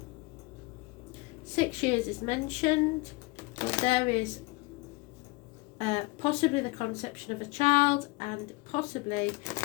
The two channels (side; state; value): right; quieter; 24.8 dB